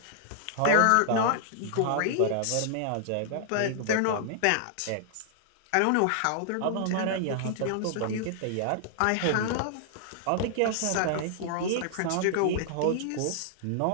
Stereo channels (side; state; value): both; different; correlation -0.01